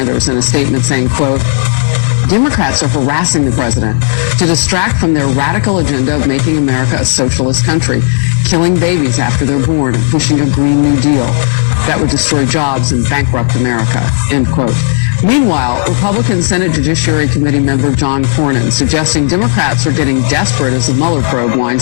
in a statement saying, quote, Democrats are harassing the president to distract from their radical agenda of making America a socialist country, killing babies after they're born, and pushing a Green New Deal that would destroy jobs and bankrupt America, end quote. Meanwhile, Republican Senate Judiciary Committee member John Cornyn suggesting Democrats are getting desperate as the Mueller probe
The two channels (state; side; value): silent; right; digital silence